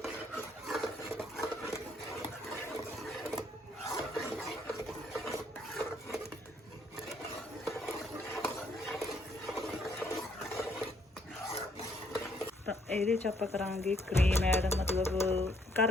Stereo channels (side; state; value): both; normal; correlation 0.68